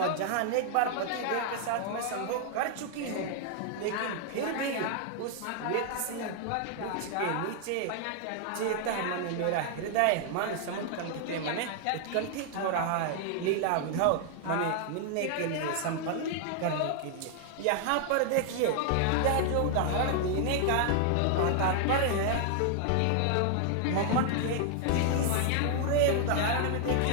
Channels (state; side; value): different; both; correlation 0.00